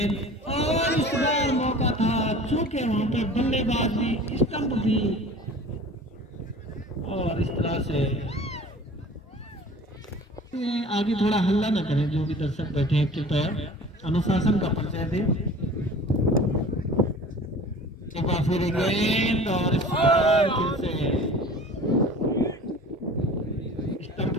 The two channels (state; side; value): normal; both; correlation 0.43